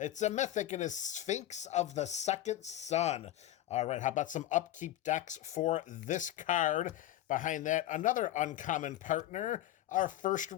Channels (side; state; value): right; quieter; 13.5 dB